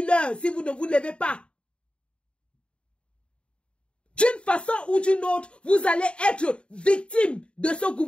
l'heure si vous ne vous levez pas. D'une façon ou d'une autre, vous allez être victime de ce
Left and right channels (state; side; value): late; right; 0.056 ms